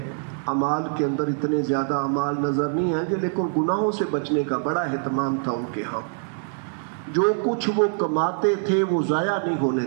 اعمال کے اندر اتنے زیادہ اعمال نظر نہیں آئیں گے، لیکن گناہوں سے بچنے کا بڑا اہتمام تھا ان کے ہاں. جو کچھ وہ کماتے تھے وہ ضائع نہیں ہونے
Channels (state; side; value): silent; left; 59 dB below the other